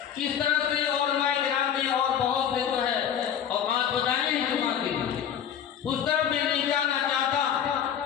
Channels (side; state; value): right; quieter; 8.9 dB